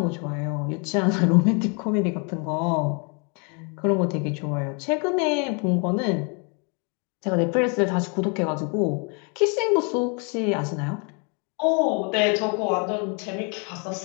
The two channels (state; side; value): quieter; right; 35.7 dB